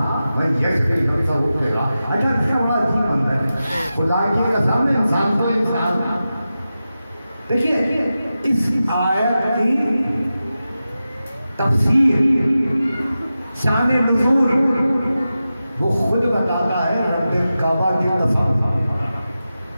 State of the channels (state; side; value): inverted; both; correlation -0.93